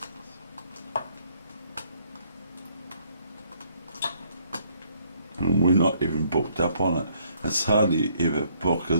And we're not even booked up on it. It's hardly ever book,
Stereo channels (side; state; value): both; inverted; correlation -0.66